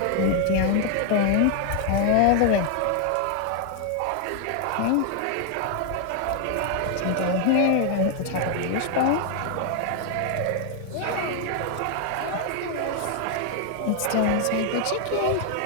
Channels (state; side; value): different; both; correlation 0.00